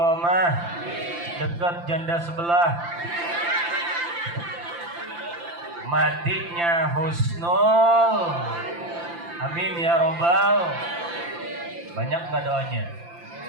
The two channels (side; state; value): left; late; 5.8 ms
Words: dekat janda sebelah, matinya husnul. Amin ya robbal. Banyak gak doanya?